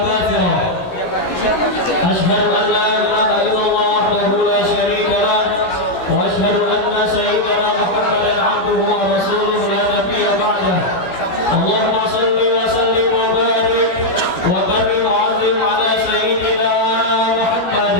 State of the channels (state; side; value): late; right; 17 ms